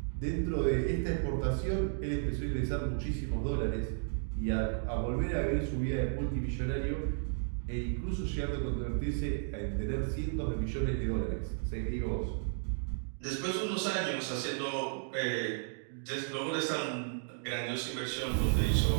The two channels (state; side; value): silent; left; digital silence